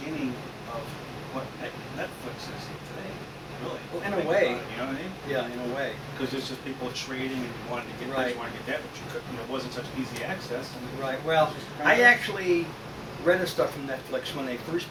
of what Netflix is today. Really. Well, in a Think way. about it, you know what I mean? Yeah, in a way. Because it's just people trading and wanting to get Right. this, wanting to get that, but you couldn't, it wasn't such easy access. And Right. Well, I actually rented stuff from Netflix when they first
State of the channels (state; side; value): identical; both; correlation 1.00